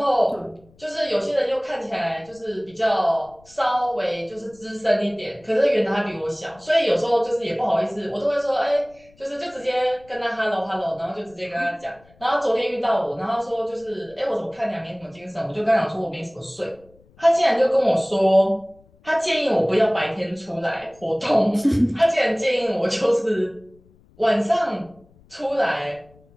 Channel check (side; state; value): left; noise; rumble, 29 dB below the sound